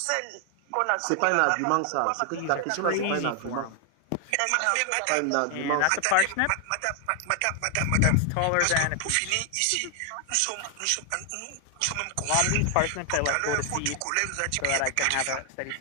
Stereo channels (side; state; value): both; different; correlation 0.00